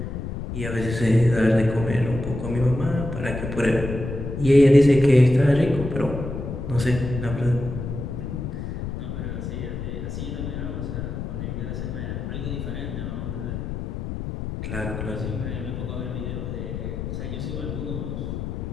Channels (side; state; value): left; noise; rumble, 5 dB below the sound